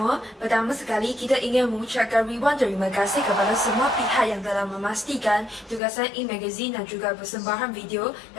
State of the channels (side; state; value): right; drops out; at 5.8 s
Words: Pertama sekali, kita ingin mengucapkan ribuan terima kasih kepada semua pihak yang telah memastikan tugasan e-magazine dan juga persembahan video